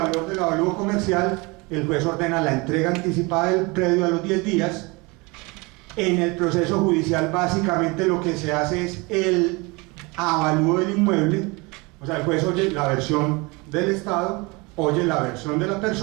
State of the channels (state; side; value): quieter; left; 26.3 dB